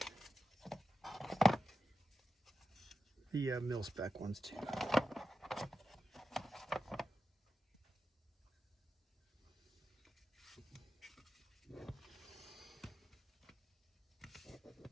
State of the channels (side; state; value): both; normal; correlation 0.91